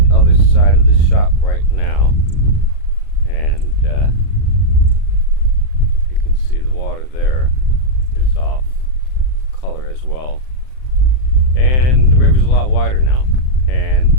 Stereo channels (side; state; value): right; late; 39 ms